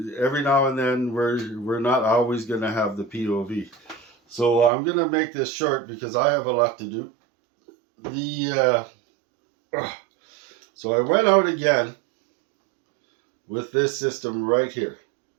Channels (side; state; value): left; drops out; at 4.7 s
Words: every now and then we're not always going to have the POV. So I'm going to make this short because I have a lot to do. The So I went out again with this system right here,